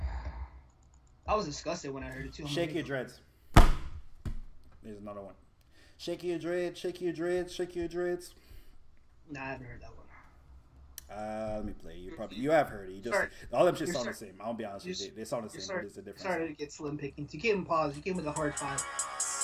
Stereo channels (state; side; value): identical; both; correlation 1.00